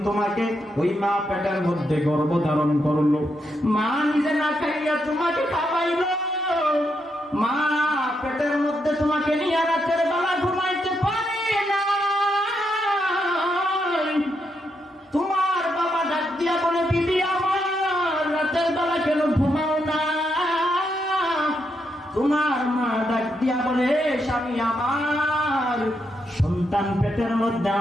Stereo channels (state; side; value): normal; both; correlation 0.81